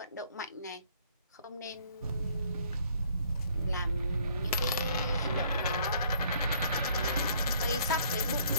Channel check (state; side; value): inverted; both; correlation -0.61